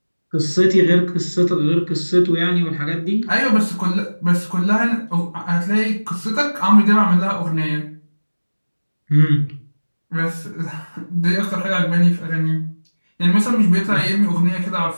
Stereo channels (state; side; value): inverted; both; correlation -1.00